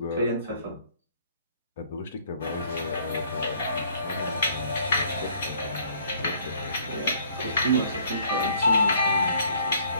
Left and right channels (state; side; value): inverted; both; correlation -0.59